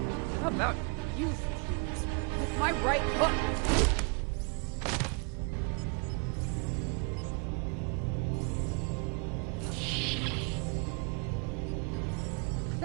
How about you, Fuse? With my right hook!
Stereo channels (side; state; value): left; quieter; 34.7 dB